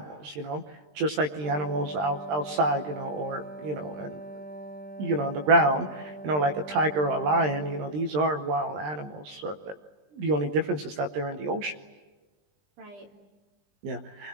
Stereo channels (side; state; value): left; late; 20 ms